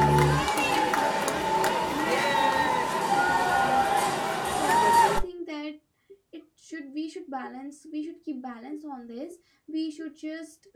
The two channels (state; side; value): identical; both; correlation 1.00